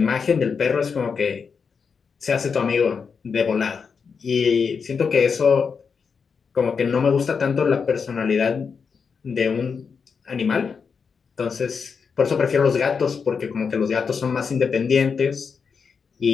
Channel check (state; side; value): quieter; right; 5.8 dB